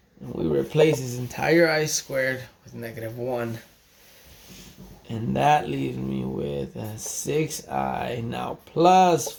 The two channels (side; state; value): both; identical; correlation 1.00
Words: And we replace this entire I squared with negative 1. And that leaves me with 6i now plus